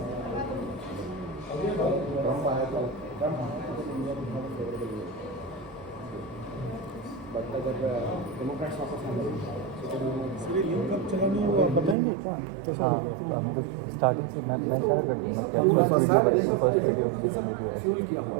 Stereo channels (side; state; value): left; drops out; at 12.0 s